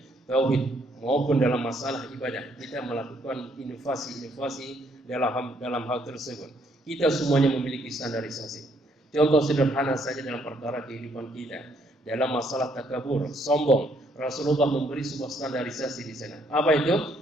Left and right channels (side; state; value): both; normal; correlation 0.69